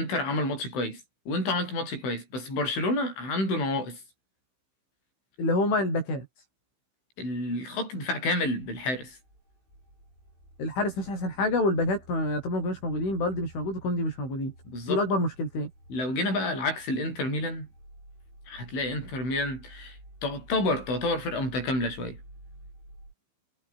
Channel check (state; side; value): late; right; 15 ms